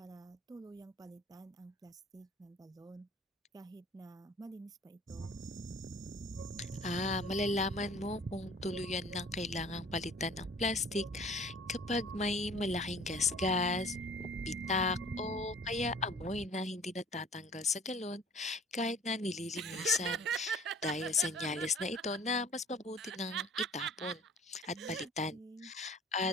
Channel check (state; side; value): normal; both; correlation 0.49